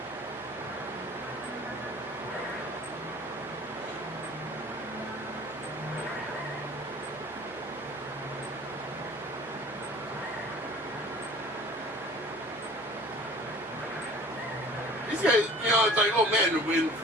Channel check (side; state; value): both; normal; correlation 0.46